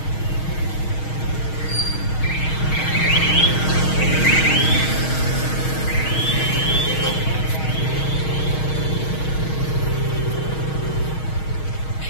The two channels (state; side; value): late; right; 6.4 ms